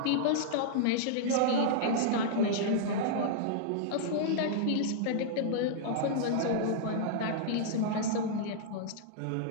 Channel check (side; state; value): both; different; correlation -0.02